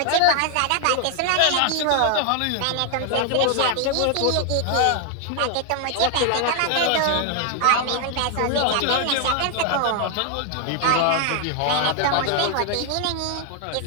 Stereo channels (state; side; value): different; both; correlation 0.00